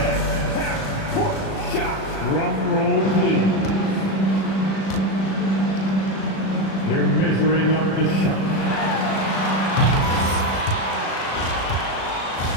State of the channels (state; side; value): late; right; 37 ms